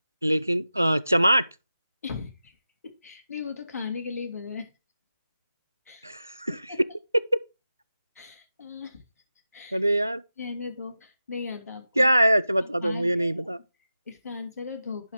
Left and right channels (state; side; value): inverted; both; correlation -0.93